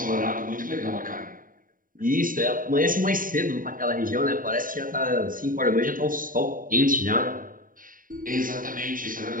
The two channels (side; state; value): left; late; 0.40 ms